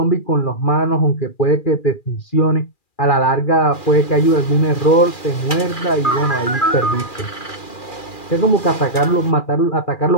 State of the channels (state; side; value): late; right; 2.4 ms